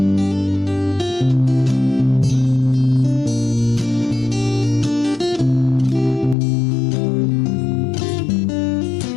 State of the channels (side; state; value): right; drops out; at 6.4 s